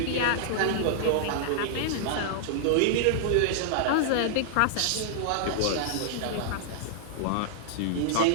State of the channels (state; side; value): different; both; correlation -0.01